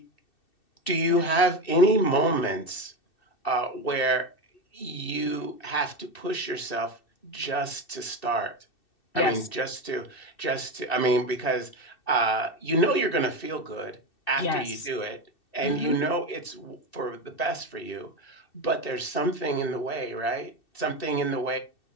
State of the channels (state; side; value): late; right; 2.6 ms